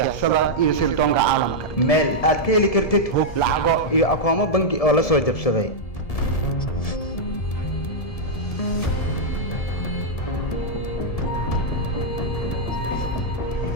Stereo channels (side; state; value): right; late; 1.7 ms